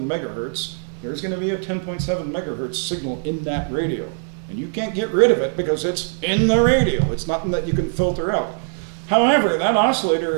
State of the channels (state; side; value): silent; left; digital silence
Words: megahertz, there's going to be a 10.7 megahertz signal in that radio. And you can't get rid of it because it's in the radio. It's nothing that you can filter out. However, that oscillator